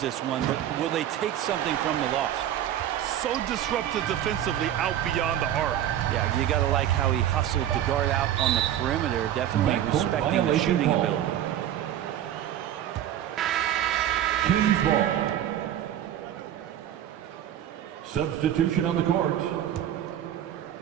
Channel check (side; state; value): left; quieter; 11.3 dB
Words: one, but will they take something from the loss? So disruptive defensively out beyond the arc. Yeah, you got to like how he hustled to guard out on the perimeter, definitely respecting the shooting ability. Kings ball. Substitution on the court.